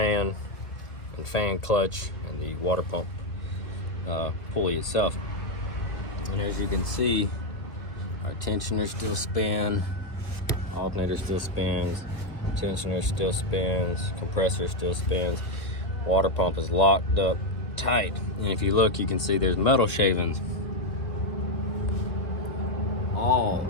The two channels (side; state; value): right; late; 2.2 ms